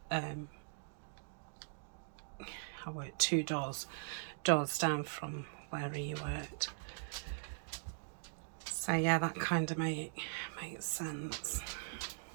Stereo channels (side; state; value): left; silent; digital silence